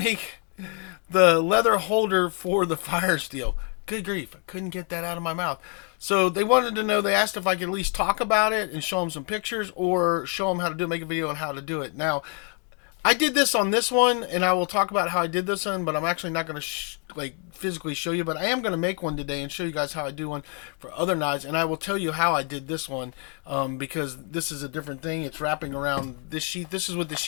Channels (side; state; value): right; quieter; 39.8 dB